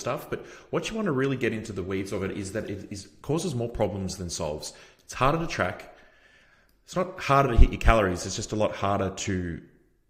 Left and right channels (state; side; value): identical; both; correlation 1.00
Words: But what you want to really get into the weeds of it is that it causes more problems than solves. It's harder to track. It's not harder to hit your calories. It's just a lot harder to